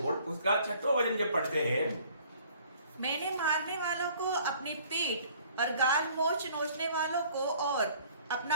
उसका 6वां वचन जब पढ़ते हैं, मैंने मारने वालों को अपनी पीठ और गाल नोचने वालों को और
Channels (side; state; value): both; inverted; correlation -0.55